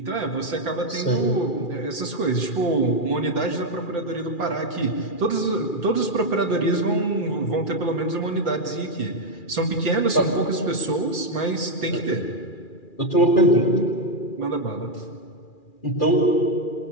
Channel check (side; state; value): right; late; 2.4 ms